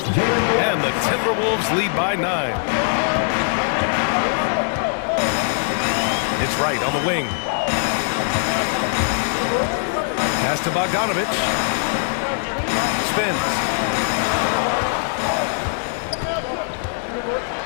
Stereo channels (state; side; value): silent; right; 58 dB below the other